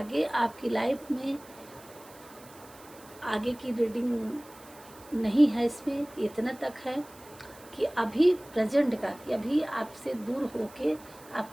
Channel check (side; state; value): right; noise; hiss, 22 dB below the sound